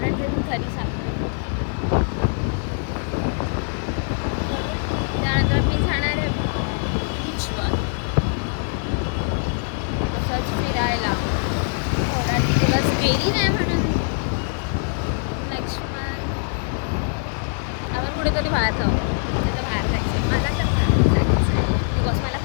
देऊन घरी सांगतो. त्यानंतर मी जाणार आहे बीचवर असंच फिरायला. थोडा दिवस गेली नाही म्हणून नेक्स्ट मंथ आपण कुठेतरी बाहेर जाऊ. तिथं बाहेर जायचं आहे मला, तर बाहेर जायचं आहे बिकॉज मला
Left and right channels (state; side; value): silent; right; 63 dB below the other